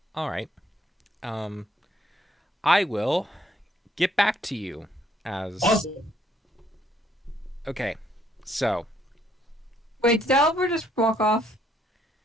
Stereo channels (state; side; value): normal; both; correlation 0.68